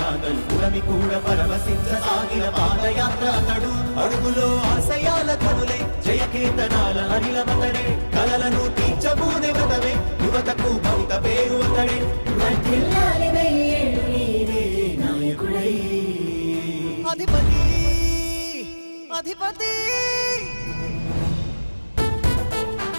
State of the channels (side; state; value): both; inverted; correlation -1.00